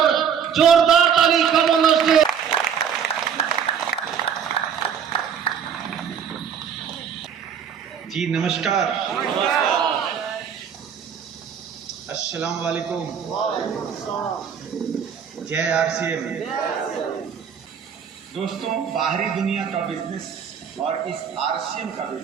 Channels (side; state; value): left; quieter; 7.7 dB